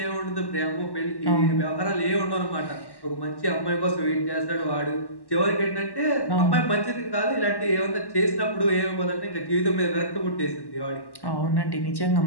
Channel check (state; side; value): late; right; 1.1 ms